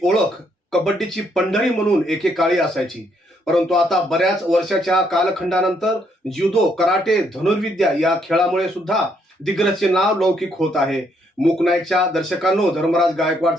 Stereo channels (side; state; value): both; normal; correlation 0.72